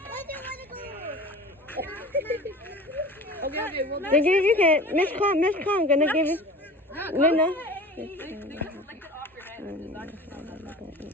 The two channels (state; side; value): normal; both; correlation 0.39